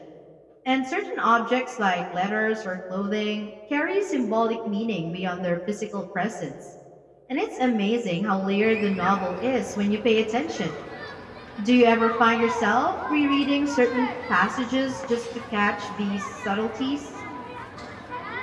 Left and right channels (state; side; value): identical; both; correlation 1.00